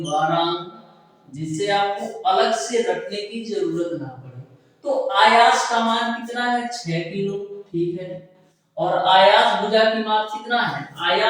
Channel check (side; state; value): both; identical; correlation 1.00